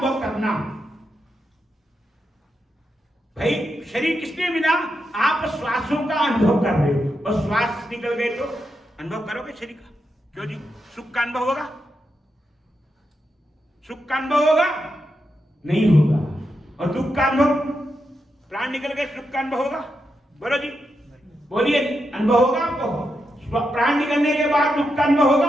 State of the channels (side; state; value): both; normal; correlation 0.85